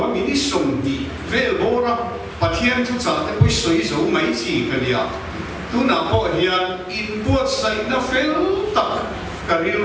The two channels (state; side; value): identical; both; correlation 1.00